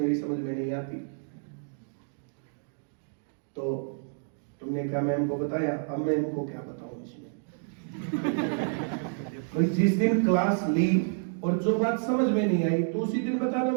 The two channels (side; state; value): left; silent; digital silence